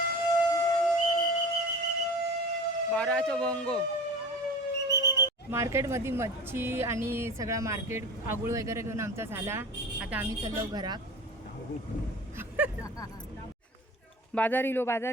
बाराचा भोंगो मार्केटमध्ये मच्छी आणि सगळा मार्केट आगुळ वगैरे घेऊन आमचा झाला आता आम्ही चाललो घरात बाजारीलो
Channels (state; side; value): normal; both; correlation 0.36